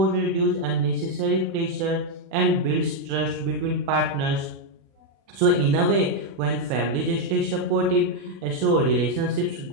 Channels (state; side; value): late; left; 36 ms